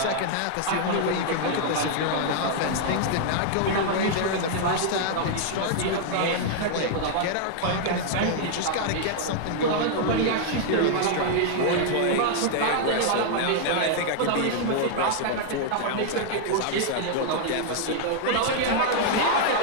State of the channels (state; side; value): different; both; correlation -0.01